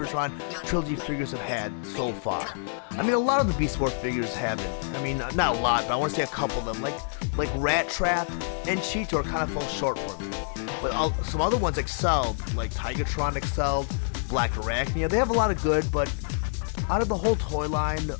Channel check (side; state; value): right; silent; digital silence